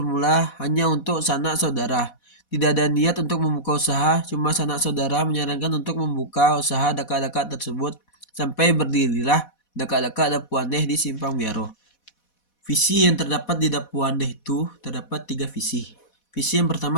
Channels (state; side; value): late; right; 4.1 ms